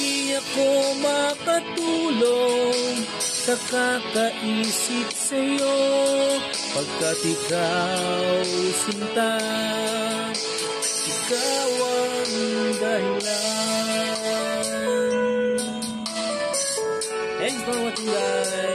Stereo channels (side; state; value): both; identical; correlation 1.00